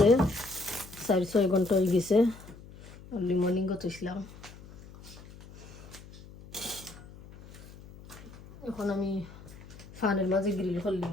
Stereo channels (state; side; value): noise; left; hum, 18 dB below the sound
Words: 4-6 ঘন্টা হয়ে গেছে। আর্লি মর্নিংও তৈছিলাম। এখন আমি ফানের মাঝে গ্রিল